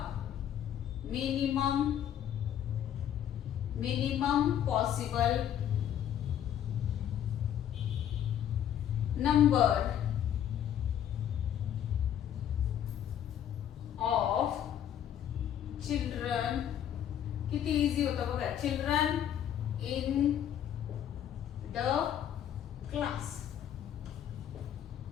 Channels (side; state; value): right; quieter; 10.1 dB